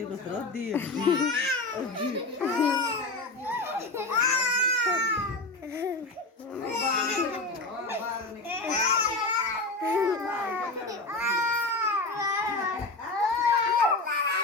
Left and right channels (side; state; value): right; quieter; 3.1 dB